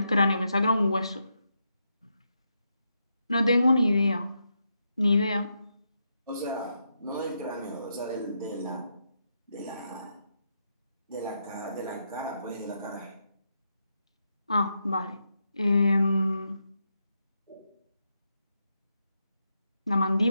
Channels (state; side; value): inverted; both; correlation -0.83